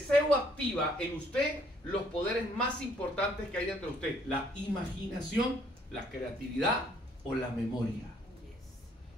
activa en usted los poderes más importantes que hay dentro de usted: la imaginación, la creatividad o la memoria.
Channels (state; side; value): normal; both; correlation 0.65